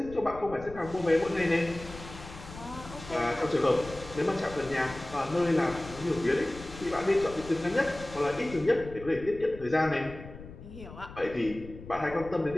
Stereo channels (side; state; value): left; noise; rumble, 15 dB below the sound